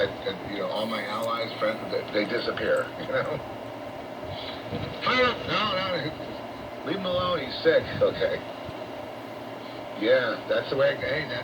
all my allies, friends, they disappear. No, leave him alone. He's sick. Okay. Yeah, that's the way. Hey,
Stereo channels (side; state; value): both; identical; correlation 1.00